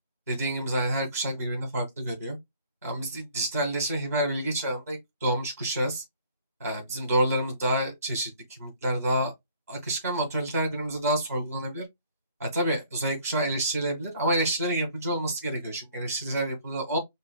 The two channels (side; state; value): both; inverted; correlation -0.58